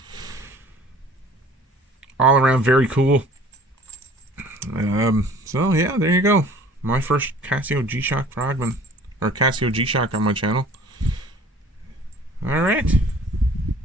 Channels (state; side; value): normal; both; correlation 0.49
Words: All around very cool. So yeah, there you go. My first Casio GShock Frogman, or Casio GShock on my channel. Alright.